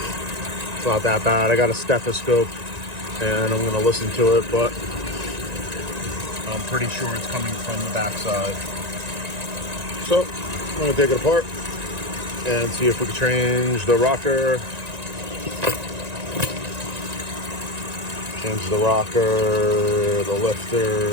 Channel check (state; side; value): late; left; 1.9 ms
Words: It's not that bad. I got a stethoscope and I'm gonna listen to it, but I'm pretty sure it's coming from the backside. So I'm gonna take it apart and see if we can change the rocker. Change the rocker, the